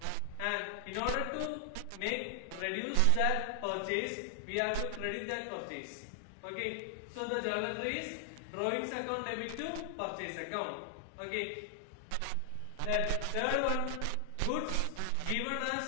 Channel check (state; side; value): different; both; correlation 0.00